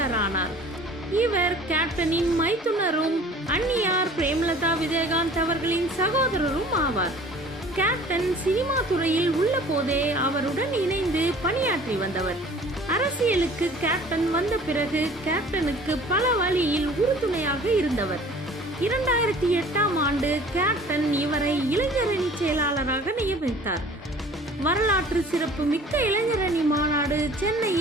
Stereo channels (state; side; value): normal; both; correlation 0.48